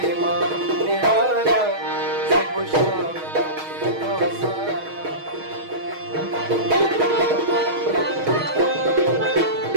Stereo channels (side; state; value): left; late; 6.3 ms